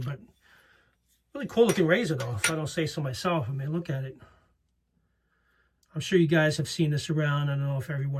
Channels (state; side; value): identical; both; correlation 1.00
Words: But really cool looking razor though, if I don't say so myself. I mean, look at it. I'm sure you guys have seen this around. I don't know if